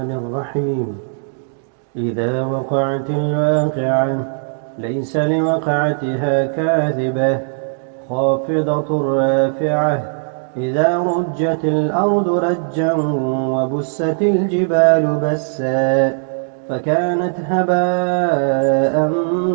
الرحيم. إذا وقعت الواقعة ليس لوقعتها كاذبة خافضة رافعة. إذا رجت الأرض رجا وبست الجبال بسا فكانت هباء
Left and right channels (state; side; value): silent; left; 67 dB below the other